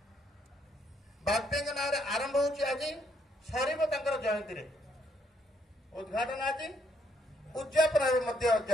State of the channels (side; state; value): both; normal; correlation 0.72